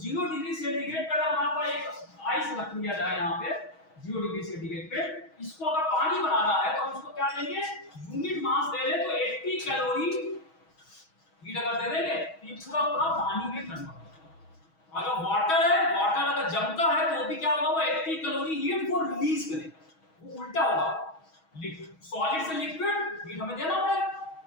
डिग्री सेंटीग्रेड पर अगर वहां पर एक आइस रख दिया जाए, यहाँ पे 0 डिग्री सेंटीग्रेड पे, इसको अगर पानी बनाना है तो हम इसको क्या लेंगे? यूनिट मास ले ले तो 80 कैलोरी हीट अगर दे देंगे तो ये पूरा पूरा पानी में कन्वर्ट होगा। अगर वाटर है, वाटर अगर जमता है तो भी क्या होगा? वो 80 कैलोरी हीट को रिलीज करेगा, वो उल्टा होगा। सॉलिड से लिक्विड हीट हमें देना पड़ेगा,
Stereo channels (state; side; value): late; right; 6.3 ms